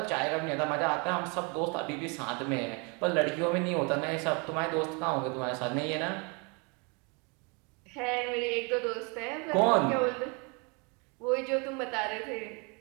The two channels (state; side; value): quieter; left; 32.0 dB